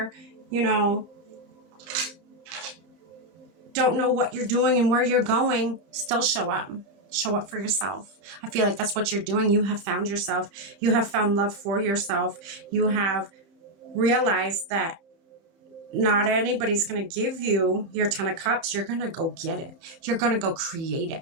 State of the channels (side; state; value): left; late; 31 ms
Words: don't know what you're doing and where you're going? Still show up. Show up for yourself. I feel like that's what you're doing. You have found yourself. You have found love for yourself. You have realized that not anybody's going to give you your 10 of cups. You're going to go get it. You're going to go create